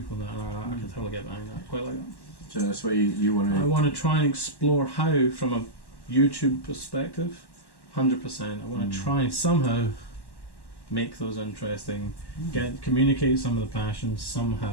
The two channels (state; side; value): late; right; 1.1 ms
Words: that. And I can totally get behind that. Quite like that. So that's where you want to. I want to try and explore how, from a YouTube perspective, 100%. I want to try and somehow make those interesting, communicate some of the passions